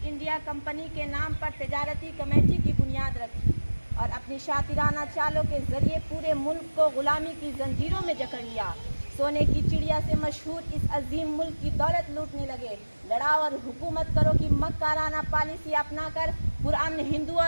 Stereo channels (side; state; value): both; inverted; correlation -1.00